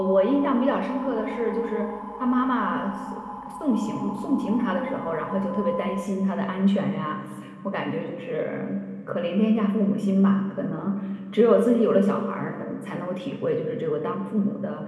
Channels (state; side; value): identical; both; correlation 1.00